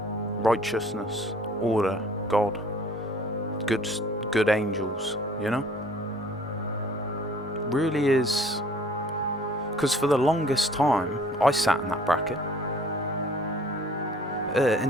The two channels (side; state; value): both; normal; correlation 0.54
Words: righteousness, order, God, good angels, you know? Really is... Because for the longest time, I sat in that bracket.